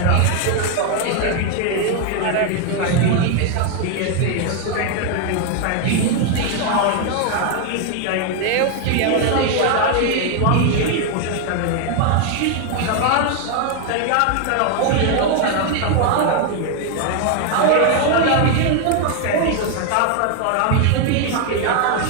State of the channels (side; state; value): both; different; correlation 0.00